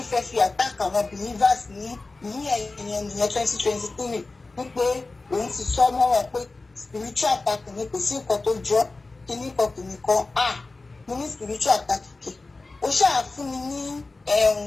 fẹ́ fi attack àwọn believers ní ẹ̀yìn 2023 wípé òun ti sọ mọ́ wọn pé spiritual attack ni kò sí nǹkan tó jọ kíní kan mo ní spiritual attack kì ó ṣáà fún mi ní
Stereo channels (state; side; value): quieter; right; 3.4 dB